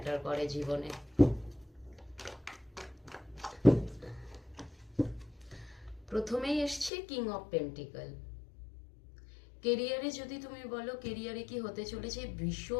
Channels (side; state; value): right; drops out; at 6.9 s